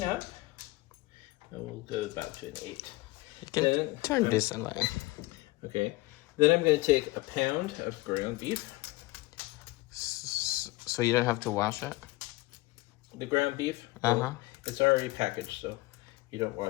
up, we'll go about to an 8. You can Then- turn this away. Okay. Then I'm going to take a pound of ground beef. So you don't have to wash it? The ground beef, Uh-huh. it's already packaged, so you don't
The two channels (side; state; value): right; quieter; 20.9 dB